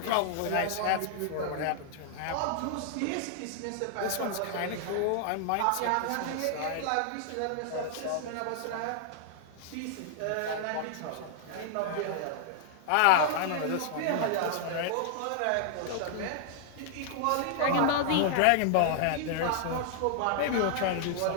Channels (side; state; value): both; different; correlation -0.01